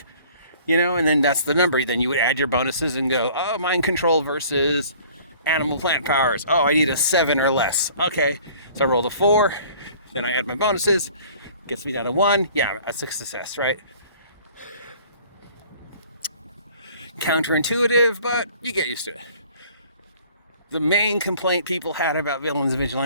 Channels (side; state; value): both; inverted; correlation -0.52